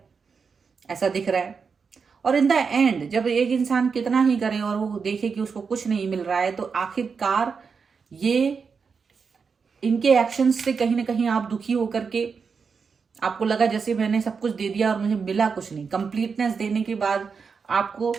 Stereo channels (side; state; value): left; quieter; 5.6 dB